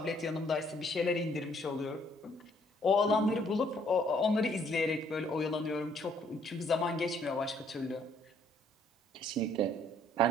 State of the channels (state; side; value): normal; both; correlation 0.64